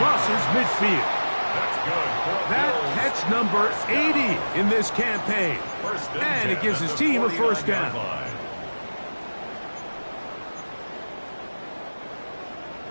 midfield. That's good. That catch number 80 in this campaign. And it gives his team a first down.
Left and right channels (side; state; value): both; inverted; correlation -1.00